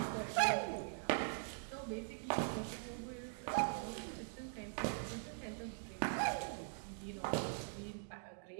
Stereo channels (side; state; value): left; silent; digital silence